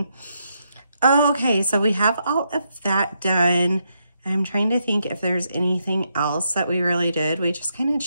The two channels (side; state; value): both; inverted; correlation -0.79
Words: Okay, so we have all of that done. I'm trying to think if there's anything else that we really did. We just kind of